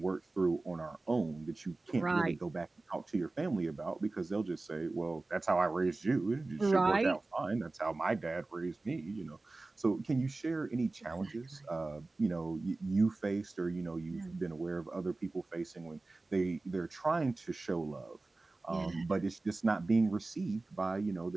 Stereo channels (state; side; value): quieter; left; 3.2 dB